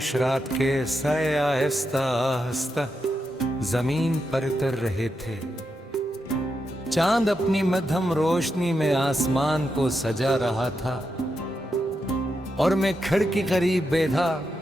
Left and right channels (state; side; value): normal; both; correlation 0.85